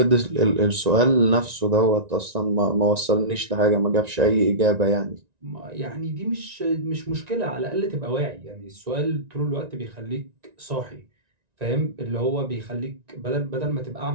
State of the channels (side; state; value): left; late; 1.9 ms